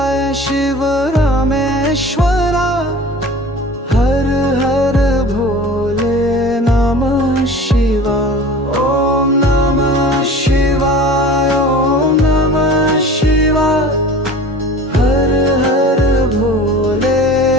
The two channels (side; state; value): both; normal; correlation 0.40